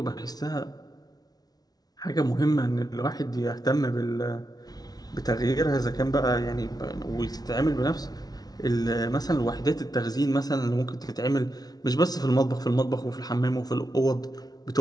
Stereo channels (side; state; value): right; late; 0.19 ms